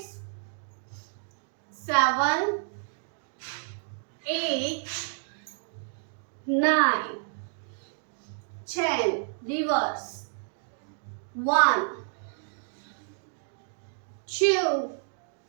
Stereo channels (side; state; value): left; silent; digital silence